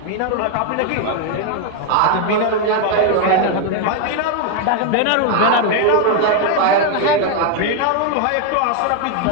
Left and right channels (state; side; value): different; both; correlation 0.01